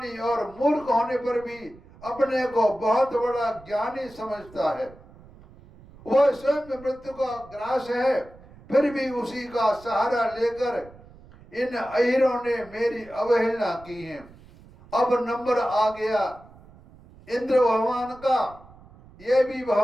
और मूर्ख होने पर भी अपने को बहुत बड़ा ज्ञानी समझता है। वह स्वयं मृत्यु का ग्रास है, फिर भी उसी का सहारा लेकर इन अहिरों ने मेरी अवहेलना की है। अब नंबर आ गया इंद्र भगवान का। ये भी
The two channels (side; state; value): right; noise; rumble, 22 dB below the sound